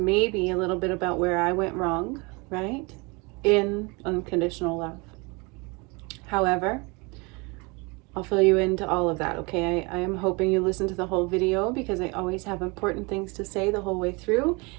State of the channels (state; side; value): quieter; left; 28.3 dB